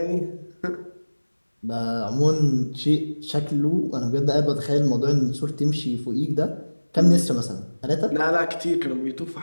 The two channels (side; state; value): both; inverted; correlation -1.00